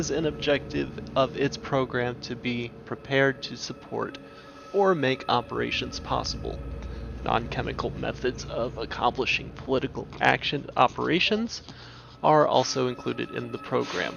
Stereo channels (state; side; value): identical; both; correlation 1.00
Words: an objective of its program to be prepared to support or make operations possible. Non-chemical methods of accomplishing political action operations are also included in the program.